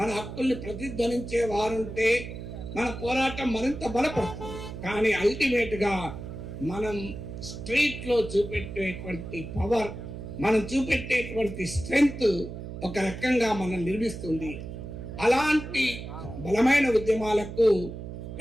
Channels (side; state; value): right; noise; hum, 9 dB below the sound